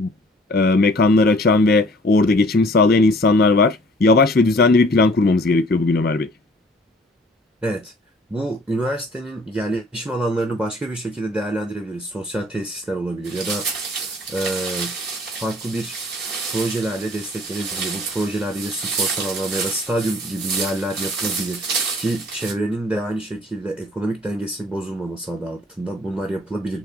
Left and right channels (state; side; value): normal; both; correlation 0.55